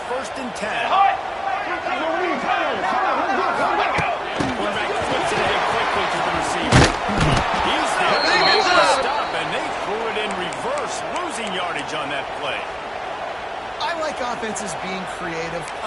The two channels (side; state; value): both; identical; correlation 1.00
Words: 1st and 10. Quarterback flips it ahead quickly to the receiver. He's there to make the stop, and they threw it in reverse, losing yardage on that play. I like offenses being creative.